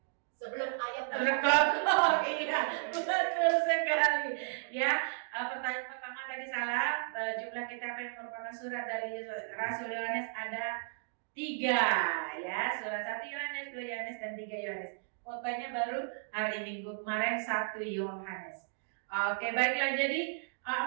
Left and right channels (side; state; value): left; silent; digital silence